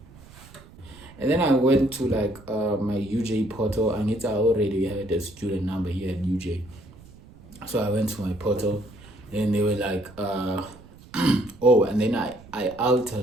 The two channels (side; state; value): right; noise; rumble, 21 dB below the sound